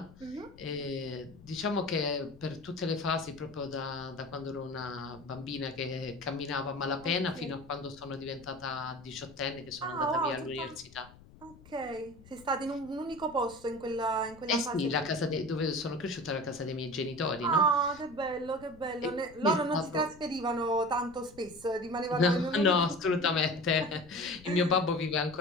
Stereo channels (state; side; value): noise; left; rumble, 22 dB below the sound